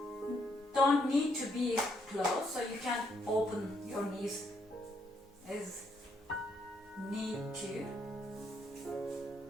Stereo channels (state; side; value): normal; both; correlation 0.74